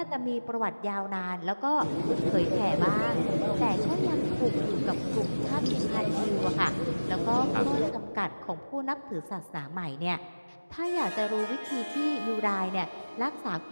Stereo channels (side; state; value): both; inverted; correlation -1.00